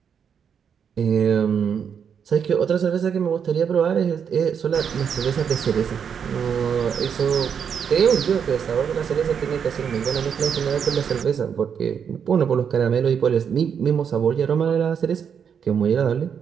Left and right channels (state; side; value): quieter; left; 7.4 dB